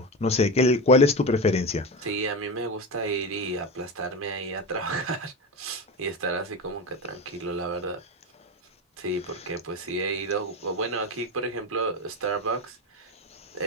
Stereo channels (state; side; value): normal; both; correlation 0.20